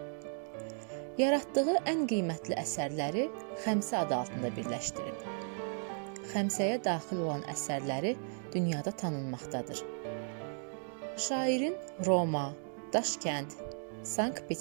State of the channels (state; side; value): silent; left; 54 dB below the other